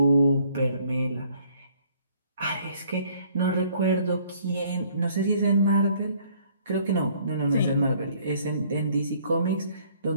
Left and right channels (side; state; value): both; inverted; correlation -0.61